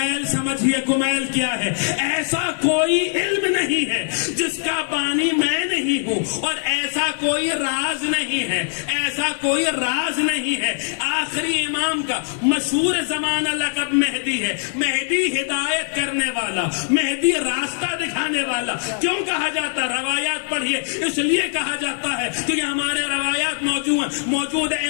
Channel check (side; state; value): right; silent; 62 dB below the other